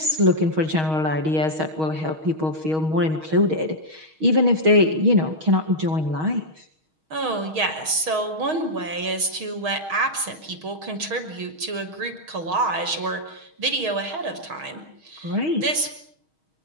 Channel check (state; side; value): late; left; 6.4 ms